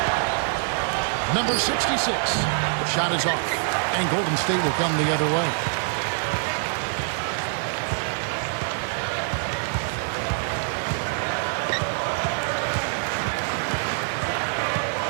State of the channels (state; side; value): silent; left; digital silence